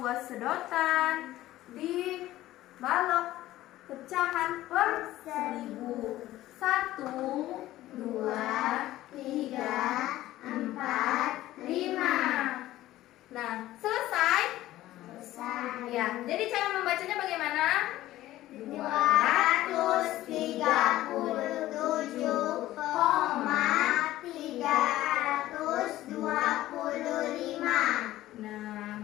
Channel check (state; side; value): quieter; right; 15.3 dB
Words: sedotan di balok pecahan per 1000. 1, 2, 3, 4, 5. Nah, selesai? Ya, jadi cara membacanya bagaimana? 237,325. Nah,